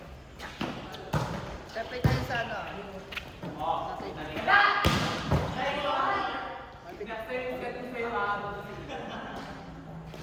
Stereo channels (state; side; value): identical; both; correlation 1.00